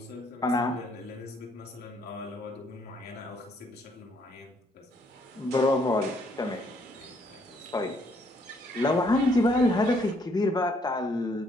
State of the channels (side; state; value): both; normal; correlation 0.68